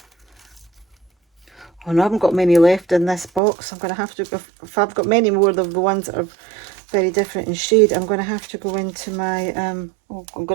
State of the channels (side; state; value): left; drops out; at 3.4 s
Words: Oh no, I haven't got many left in this box. I'm going to have to, if I've got many more of the ones that are very different in shade, I'm going to have to go into my, I'm